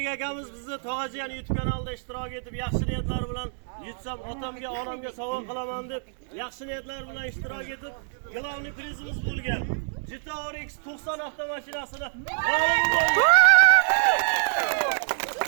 akamiz bizni Tog'ajiyan YouTube kanalida ishtirok etib, yaxshi niyatlar bilan yutsam otamga, onamga sovg'a qilaman deb yaxshi niyatlar bilan ishtirok etib, glavniy prizimiz bo'lgan Jitour X90 avtomashinasini g'olib bo'ldi.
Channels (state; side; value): silent; left; digital silence